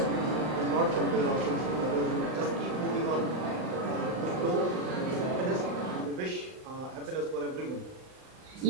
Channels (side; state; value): left; late; 39 ms